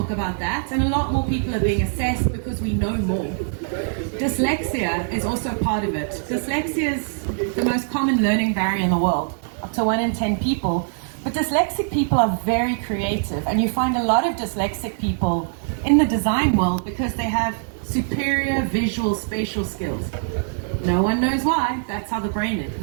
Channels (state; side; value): silent; left; digital silence